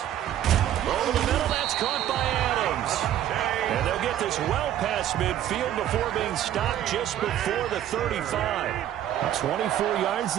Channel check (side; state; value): left; quieter; 11.6 dB